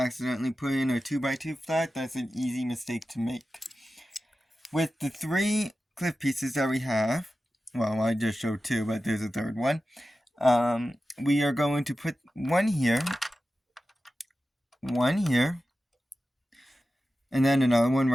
put in a 2x2 flat. That's an easy mistake to make. With the 3 cliff pieces that we have, well, I just showed 2, but there's a third one. We are going to put one here, and then another one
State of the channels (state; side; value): normal; both; correlation 0.93